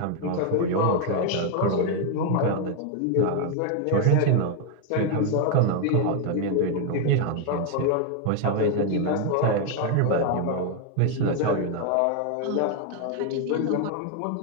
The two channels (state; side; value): different; both; correlation 0.01